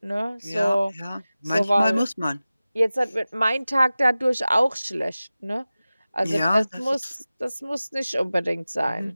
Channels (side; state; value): both; inverted; correlation -0.97